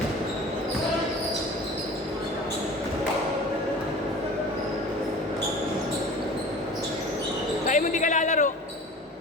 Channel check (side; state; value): both; normal; correlation 0.40